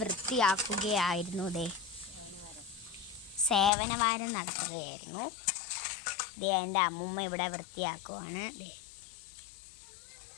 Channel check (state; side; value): drops out; right; at 3.7 s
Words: വൃത്തിയാക്കുകയായിരുന്നു. സേവനവാരം നടത്തുകയായിരുന്നു. എൻ്റെ അമ്മൂമ്മ ഇവിടെ വൃത്തിയാക്കുവാണ്.